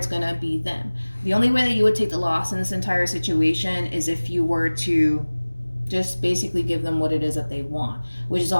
going to be them. The only way that you would take the loss in this entire situation is if you were to just basically give them what it is that they want, which is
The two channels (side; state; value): both; inverted; correlation -1.00